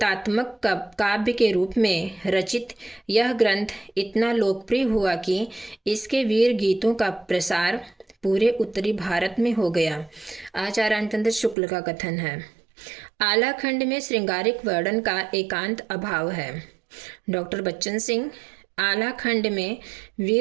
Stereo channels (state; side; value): drops out; left; at 11.6 s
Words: काव्य के रूप में रचित यह ग्रंथ इतना लोकप्रिय हुआ कि इसके वीर गीतों का प्रसार पूरे उत्तरी भारत में हो गया। आचार्य रामचंद्र शुक्ल का कथन है। आला खंड में श्रृंगारिक वर्णन का एकांत अभाव है। डॉक्टर बच्चन सिंह, आला खंड में